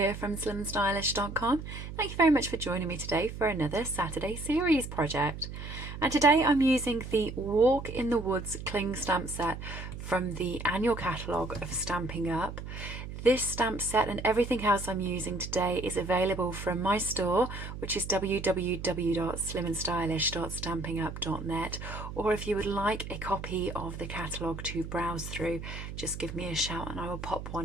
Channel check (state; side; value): noise; right; hum, 9 dB below the sound